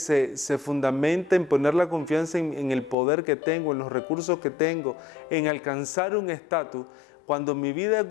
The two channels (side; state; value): right; drops out; at 3.0 s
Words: fundamenta en poner la confianza en el poder que tengo, en los recursos que tengo, en alcanzar un estatus. Cuando mi vida es